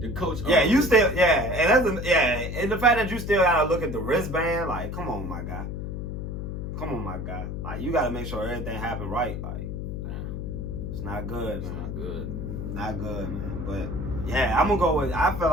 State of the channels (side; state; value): left; noise; hum, 5 dB below the sound